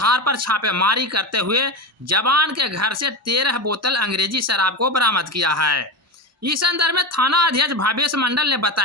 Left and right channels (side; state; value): both; normal; correlation 0.21